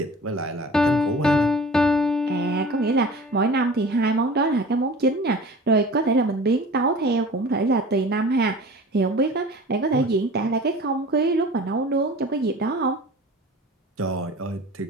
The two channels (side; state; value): both; normal; correlation 0.41